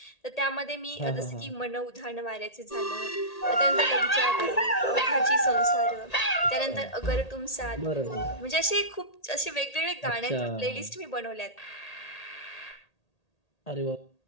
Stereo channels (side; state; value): right; late; 1.8 ms